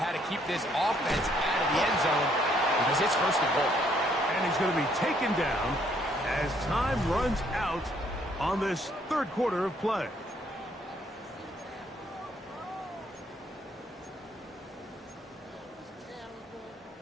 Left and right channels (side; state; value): both; normal; correlation 0.67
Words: to keep this offense out of the end zone because it's 1st and goal. And he's going to be taken down as time runs out on this 3rd quarter of play.